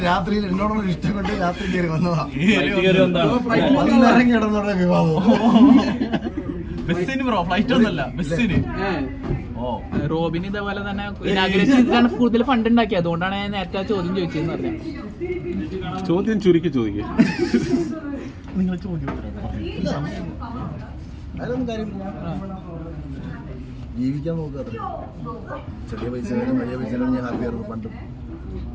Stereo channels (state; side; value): identical; both; correlation 1.00